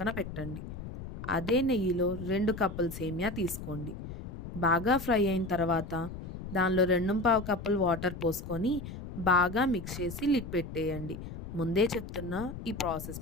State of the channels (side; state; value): left; noise; rumble, 10 dB below the sound